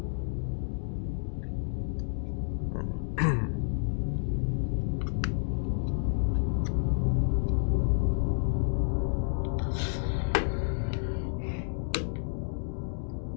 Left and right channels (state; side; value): silent; right; digital silence